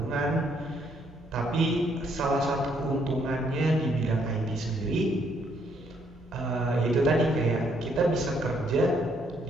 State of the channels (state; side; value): normal; both; correlation 0.70